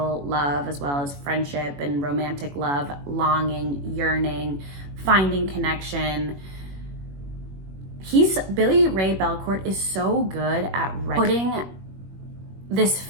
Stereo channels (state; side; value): late; left; 21 ms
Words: love, as well as friendship and romantic love, longing, yearning, finding connection. Billy Ray Belcourt is so good at putting